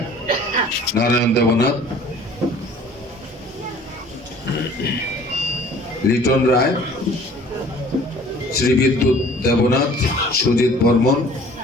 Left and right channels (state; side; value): normal; both; correlation 0.50